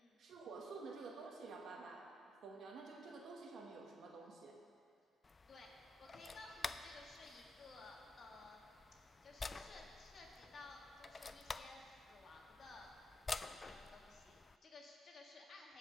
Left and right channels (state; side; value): normal; both; correlation 0.83